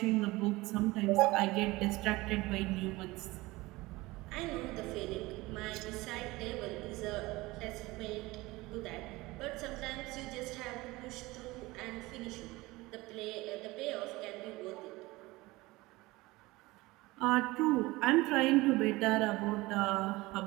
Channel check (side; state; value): left; quieter; 20.8 dB